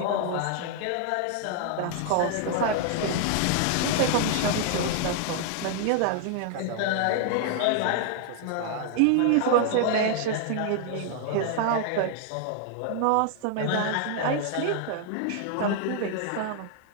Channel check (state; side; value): different; both; correlation 0.00